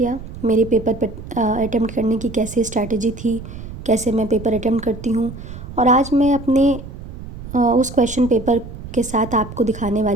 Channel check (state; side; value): noise; right; rumble, 12 dB below the sound